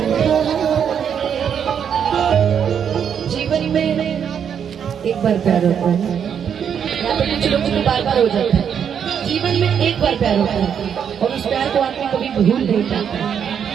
जीवन में एक बार प्यार होता है या तो कुछ लोगों को बार बार हो जाता है। जीवन में एक बार प्यार होता है और उस प्यार को आदमी कभी भूल नहीं पाता।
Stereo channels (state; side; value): quieter; left; 8.0 dB